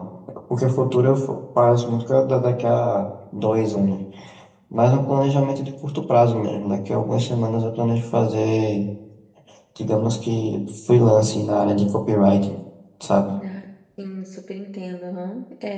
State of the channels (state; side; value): identical; both; correlation 1.00